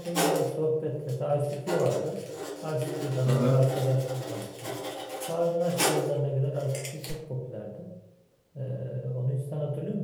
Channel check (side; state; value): both; identical; correlation 1.00